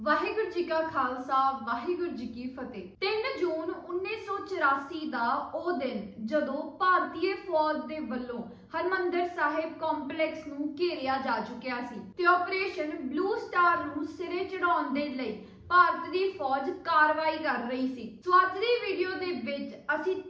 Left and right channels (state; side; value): identical; both; correlation 1.00